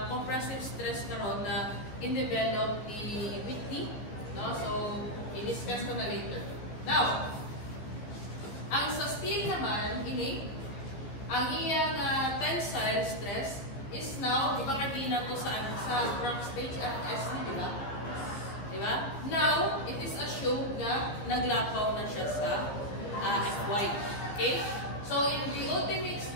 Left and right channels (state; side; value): late; right; 14 ms